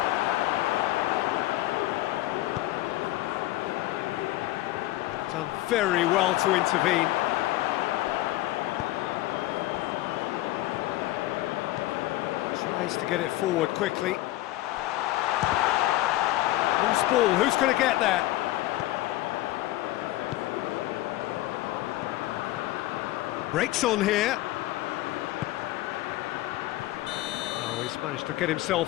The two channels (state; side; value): quieter; right; 16.7 dB